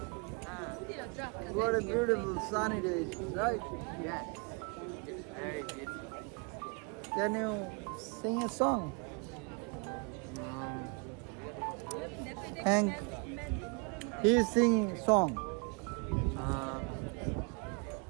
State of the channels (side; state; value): left; quieter; 34.1 dB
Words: What a beautiful sunny day, right? Yes. Very beautiful. Can you sing a song? Hank, he's singing song.